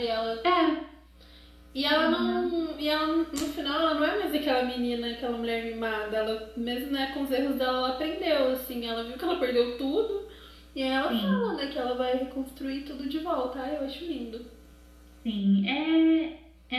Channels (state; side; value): identical; both; correlation 1.00